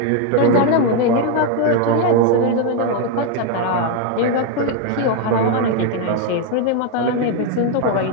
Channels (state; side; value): different; both; correlation 0.01